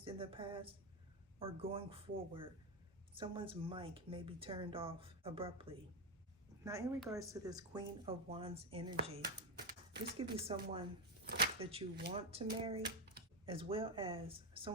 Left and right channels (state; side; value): normal; both; correlation 0.09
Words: in the past, or going forward, someone's mic may be turned off abruptly. Now, in regards to this Queen of Wands energy, this could be someone that you want to marry, as well as